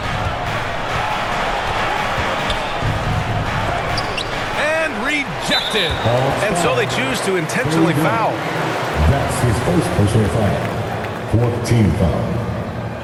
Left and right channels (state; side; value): identical; both; correlation 1.00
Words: Tipped in. And so they choose to intentionally foul. That's his first personal foul. 4th team foul.